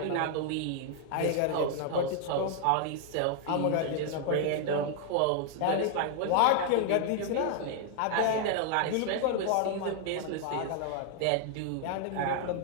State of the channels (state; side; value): different; both; correlation 0.00